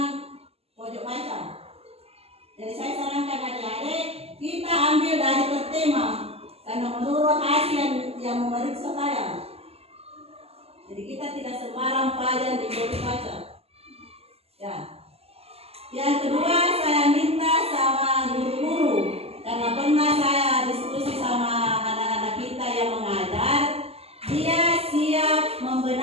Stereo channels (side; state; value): left; late; 0.29 ms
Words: pojok baca. Jadi saya sarankan adik-adik kita ambil dari per tema karena menurut hasil yang memeriksa saya. Jadi kita tidak sembarang pelajaran di pojok baca. Ya. Yang kedua saya minta sama guru-guru karena pernah saya diskusi sama anak-anak kita yang mengajar, dia siap